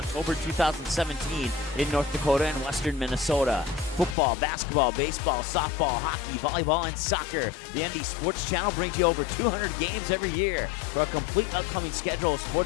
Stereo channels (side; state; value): right; drops out; at 4.2 s